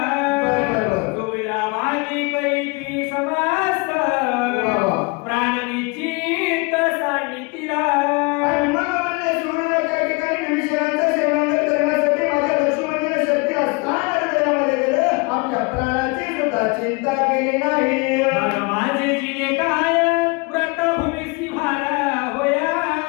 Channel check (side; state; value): right; quieter; 28.7 dB